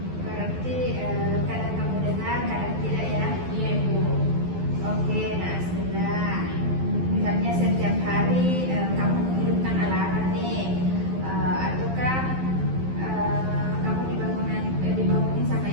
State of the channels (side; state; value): left; late; 12 ms